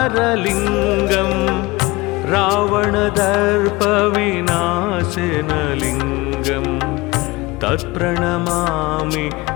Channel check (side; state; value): right; quieter; 22.1 dB